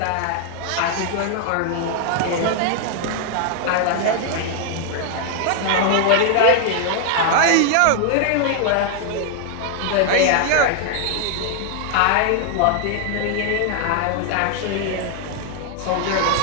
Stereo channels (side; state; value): both; different; correlation 0.00